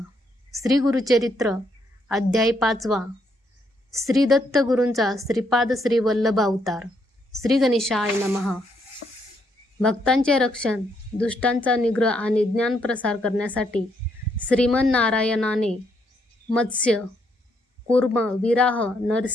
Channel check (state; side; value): normal; both; correlation 0.74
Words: श्री गुरुचरित्र अध्याय 5. श्री दत्त गुरूंचा श्रीपाद श्री वल्लभ अवतार. श्री गणेशाय नमः. भक्तांचे रक्षण, दुष्टांचा निग्रह आणि ज्ञान प्रसार करण्यासाठी श्रीमन्नारायणाने मत्स्य, कूर्म, विराह,